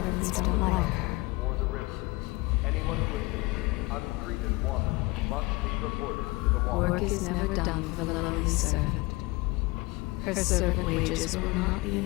from the mountains or the rivers. Anyone who is consumed untreated water must be reported to the water. Work is never done for the lowly servant. Her servant wages will not be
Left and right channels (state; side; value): quieter; right; 23.4 dB